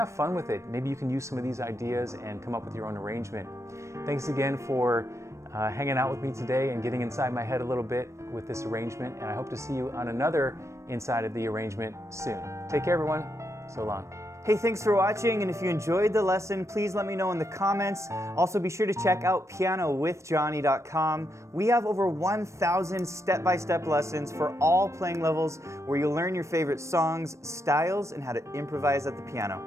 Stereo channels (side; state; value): left; late; 0.14 ms